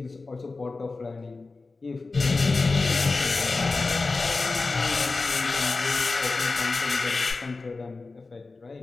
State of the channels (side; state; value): right; quieter; 3.8 dB